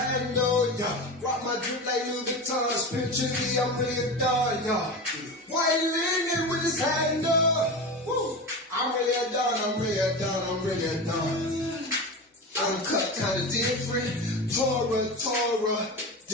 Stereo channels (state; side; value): normal; both; correlation 0.25